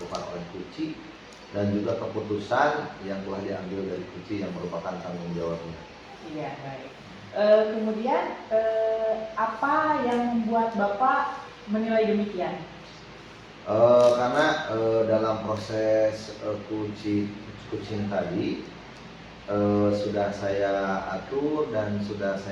oleh coaching dan juga keputusan yang telah diambil dari coaching yang merupakan tanggung jawabnya. Iya, baik. Kemudian apa yang membuat Bapak menilai demikian? Karena dalam proses coaching tadi sudah saya atur dan sudah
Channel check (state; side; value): identical; both; correlation 1.00